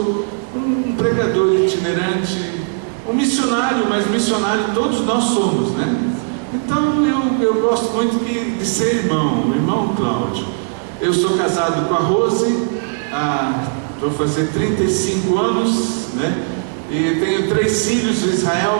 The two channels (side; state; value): left; silent; digital silence